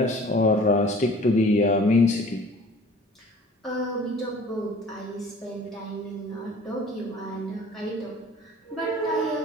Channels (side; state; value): both; normal; correlation 0.47